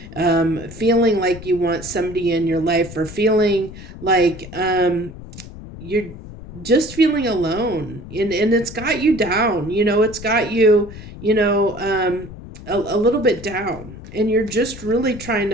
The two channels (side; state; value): left; noise; rumble, 14 dB below the sound